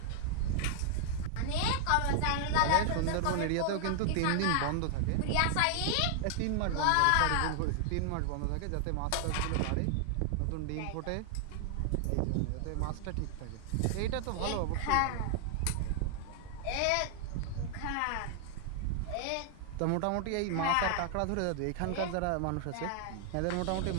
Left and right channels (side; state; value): both; different; correlation 0.00